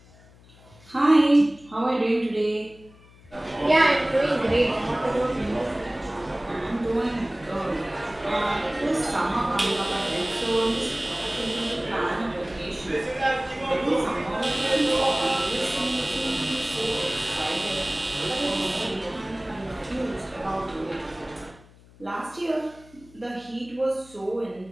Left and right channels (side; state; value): left; noise; hum, 25 dB below the sound